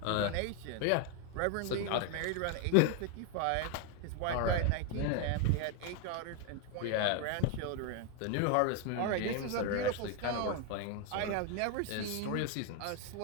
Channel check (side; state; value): both; different; correlation 0.01